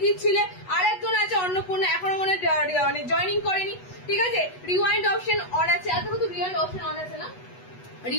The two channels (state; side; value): late; right; 8.1 ms